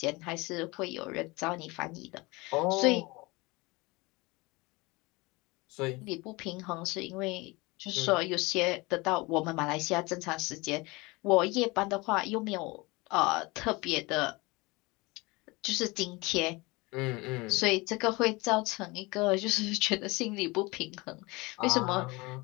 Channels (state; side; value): quieter; right; 24.1 dB